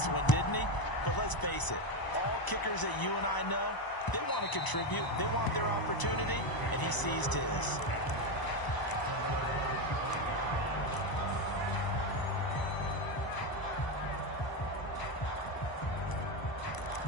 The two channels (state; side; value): late; right; 1.0 ms